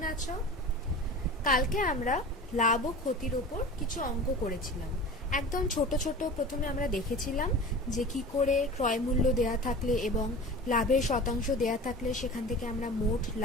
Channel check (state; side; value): normal; both; correlation 0.36